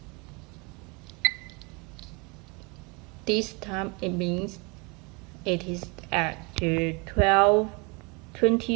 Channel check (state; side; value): quieter; left; 29.1 dB